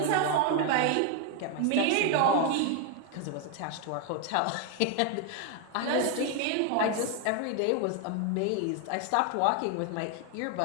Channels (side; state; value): both; different; correlation 0.01